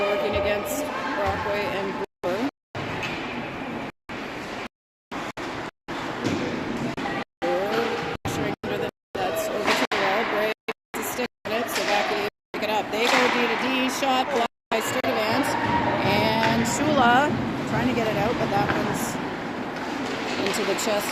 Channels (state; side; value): identical; both; correlation 1.00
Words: working against Brockway and Brewer. They go D to D, shot blocked by Sturdivant, and Shula trying to get it out, but that one's into the